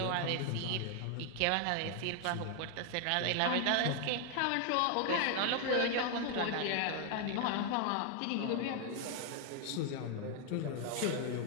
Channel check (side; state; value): both; different; correlation 0.00